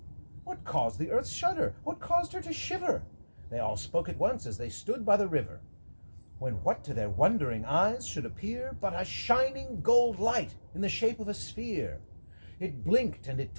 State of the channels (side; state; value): both; inverted; correlation -1.00